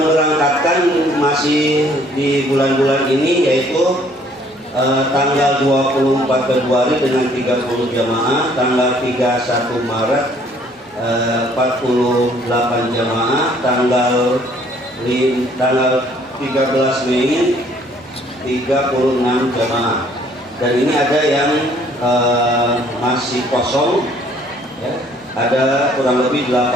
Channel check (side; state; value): both; normal; correlation 0.61